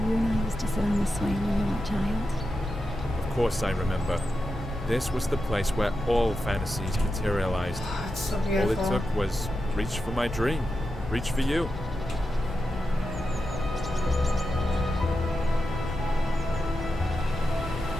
and I used to sit on the swing when you were a child? Of course I remember. This was the place where all fantasies materialized. Oh, it's so All beautiful. it took was reach for my dream. Reach for you.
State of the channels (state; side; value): normal; both; correlation 0.89